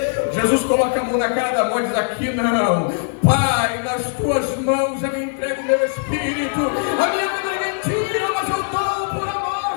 Jesus coloca a mão na cara da morte e diz: aqui não, Pai, nas tuas mãos eu entrego o meu espírito. A minha vida é mentira, mas eu dou por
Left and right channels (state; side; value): silent; right; 66 dB below the other